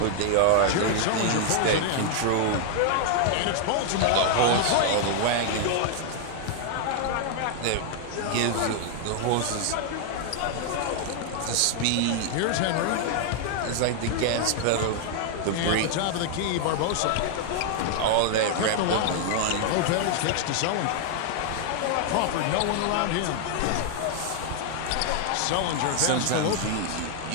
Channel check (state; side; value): different; both; correlation 0.00